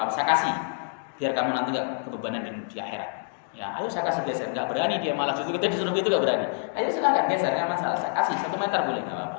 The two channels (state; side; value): silent; right; digital silence